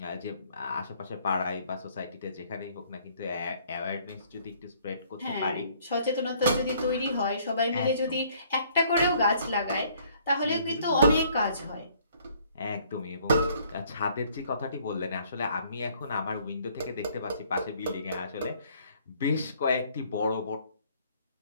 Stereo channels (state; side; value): inverted; both; correlation -0.62